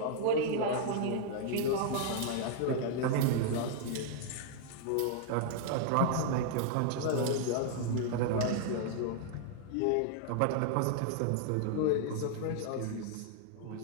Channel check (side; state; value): both; different; correlation -0.01